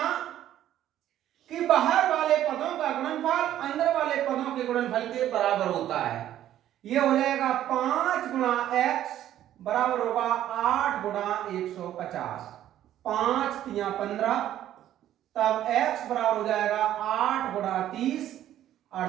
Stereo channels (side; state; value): left; quieter; 12.1 dB